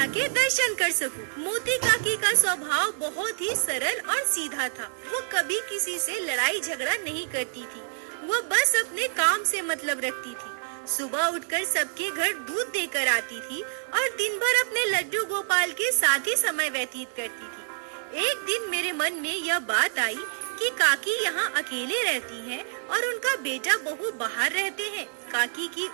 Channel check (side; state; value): left; silent; digital silence